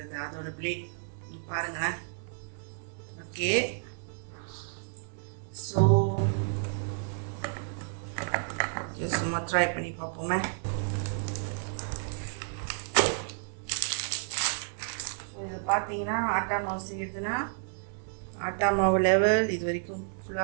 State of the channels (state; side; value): silent; left; digital silence